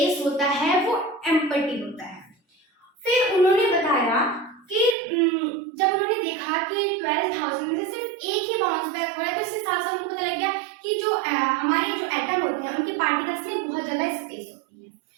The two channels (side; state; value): left; drops out; at 5.0 s